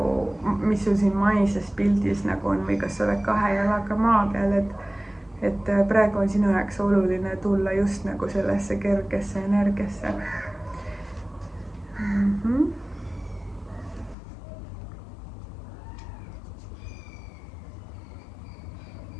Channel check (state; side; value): drops out; right; at 14.2 s